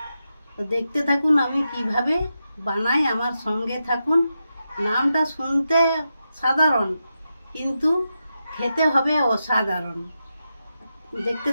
তো দেখতে থাকুন আমি কিভাবে বানাই, আমার সঙ্গে থাকুন। নামটা শুনতে সাধারণ কিন্তু খেতে হবে অসাধারণ। দেখতে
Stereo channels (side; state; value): both; inverted; correlation -0.88